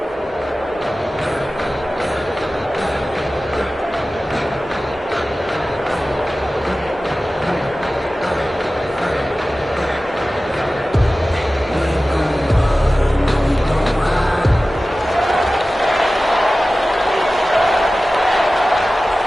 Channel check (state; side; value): normal; both; correlation 0.96